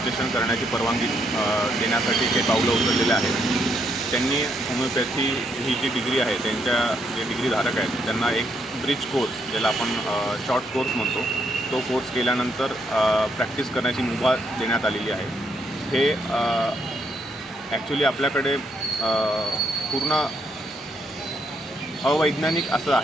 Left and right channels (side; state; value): both; normal; correlation 0.75